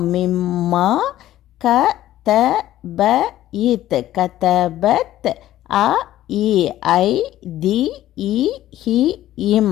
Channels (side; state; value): right; quieter; 13.7 dB